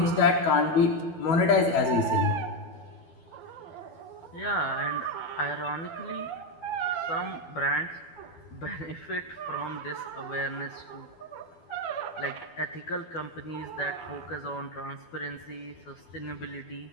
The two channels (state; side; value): late; right; 12 ms